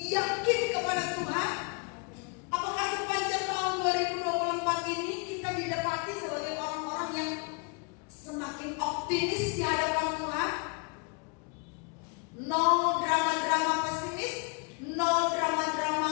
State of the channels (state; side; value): quieter; right; 34.2 dB